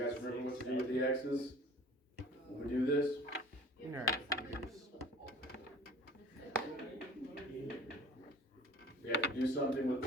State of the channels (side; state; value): both; normal; correlation 0.46